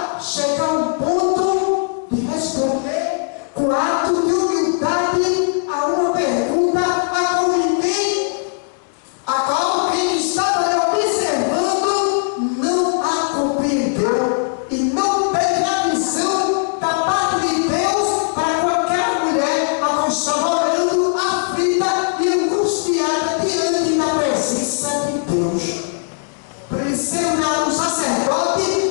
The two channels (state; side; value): silent; right; 67 dB below the other